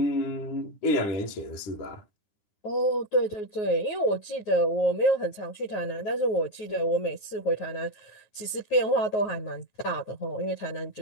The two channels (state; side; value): late; right; 9.4 ms